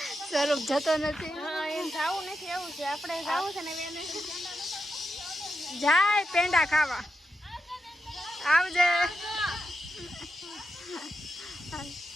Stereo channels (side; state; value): both; normal; correlation 0.87